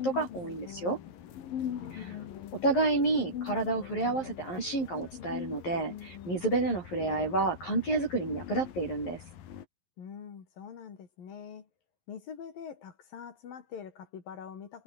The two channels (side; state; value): right; late; 11 ms